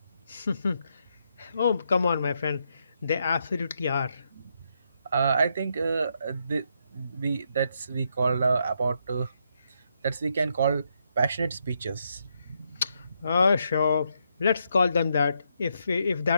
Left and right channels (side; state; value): both; inverted; correlation -0.79